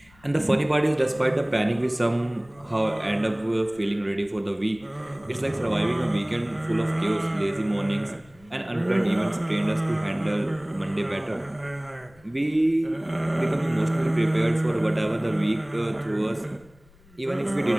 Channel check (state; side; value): noise; left; rumble, 28 dB below the sound